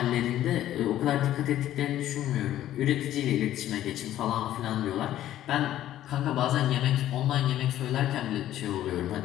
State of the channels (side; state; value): right; quieter; 12.8 dB